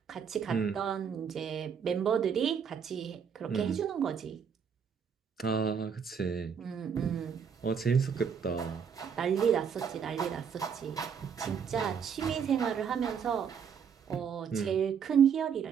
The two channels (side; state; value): left; quieter; 7.1 dB